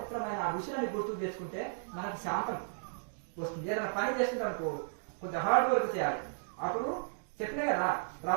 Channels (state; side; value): silent; left; digital silence